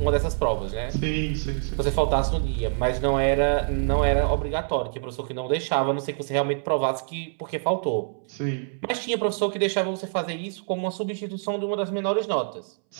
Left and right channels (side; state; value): left; silent; 61 dB below the other